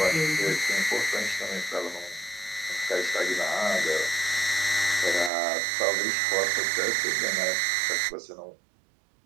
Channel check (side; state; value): left; drops out; at 5.3 s